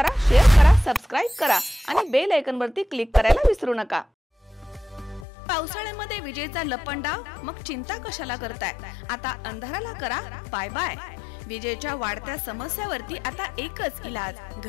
शेअर करा, सबस्क्राइब करा आणि बेल आयकॉनवरती क्लिक करायला विसरू नका। पावसाळ्यामध्ये विजेचा लपंडाव, मग चिंता कशाला करताय? आता अंधाराला करा बाय बाय। विजेच्या वाढत्या समस्यावरती आता एकच इलाज,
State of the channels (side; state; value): right; drops out; at 5.2 s